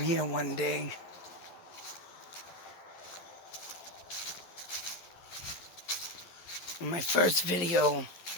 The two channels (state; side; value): late; right; 11 ms